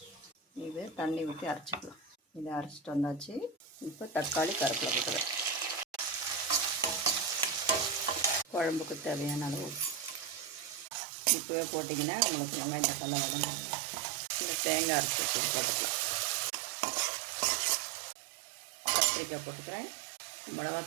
இது தண்ணி ஊற்றி அரைச்சிக்கலாம். இதை அரைச்சிட்டு வந்தாச்சு. இப்போ தக்காளி, கருவேப்பிலை போட்டுக்கிறேன். குழம்புக்கு தேவையான அளவு இப்போவே போட்டிங்கன்னா உங்களுக்கு வெங்காயம் தக்காளி வதங்கும். இந்த தேங்காய் அரைச்சி போட்டுக்கலாம். கத்திரிக்காய் போட்டுக்கிறேன்.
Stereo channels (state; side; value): drops out; left; at 10.9 s